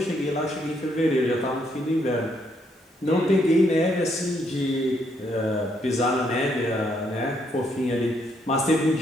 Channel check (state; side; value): normal; both; correlation 0.73